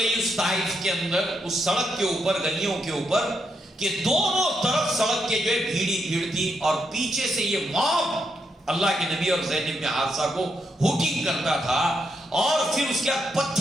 اس طائف کے اندر، اس سڑک کے اوپر، گلیوں کے اوپر، کہ دونوں طرف سڑک کے جو ہے بھیڑی بھیڑ تھی، اور پیچھے سے یہ موب اللہ کے نبی اور زید بن حارثہ کو ہوٹنگ کرتا تھا، اور پھر اس کے بعد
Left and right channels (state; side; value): normal; both; correlation 0.80